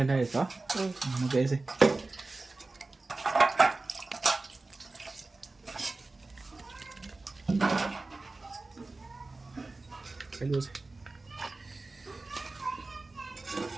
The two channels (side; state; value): left; quieter; 3.4 dB